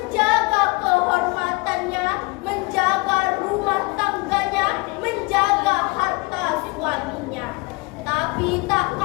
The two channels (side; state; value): right; quieter; 26.0 dB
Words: kehormatannya, menjaga rumah tangganya, menjaga harta suaminya. Tapi tak